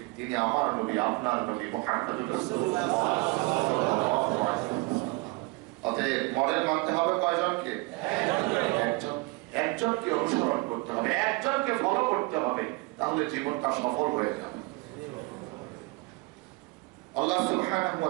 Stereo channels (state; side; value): quieter; left; 25.8 dB